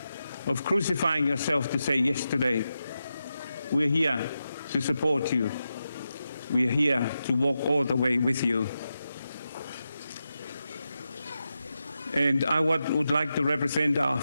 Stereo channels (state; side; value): inverted; both; correlation -0.89